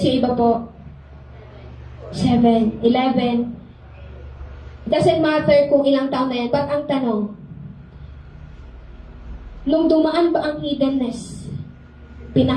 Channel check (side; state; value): both; identical; correlation 1.00